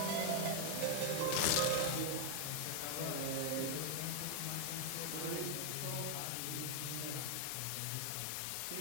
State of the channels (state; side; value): different; both; correlation 0.00